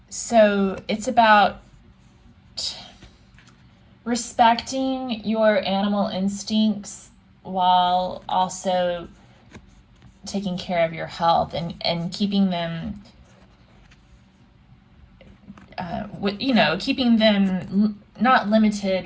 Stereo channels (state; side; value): identical; both; correlation 1.00